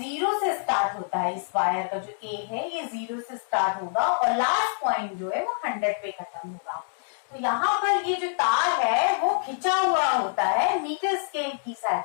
से स्टार्ट होता है। इस वायर का जो A है, ये 0 से स्टार्ट होगा और लास्ट पॉइंट जो है वो 100 पे खत्म होगा। तो यहाँ पर ये जो तार है वो खिंचा हुआ होता है, मीटर स्केल की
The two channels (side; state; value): right; silent; digital silence